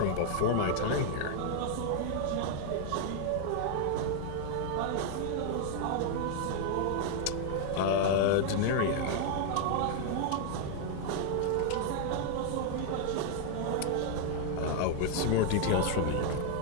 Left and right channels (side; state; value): both; different; correlation 0.00